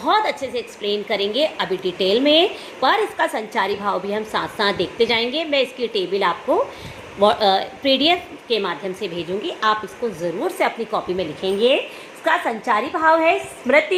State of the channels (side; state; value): both; identical; correlation 1.00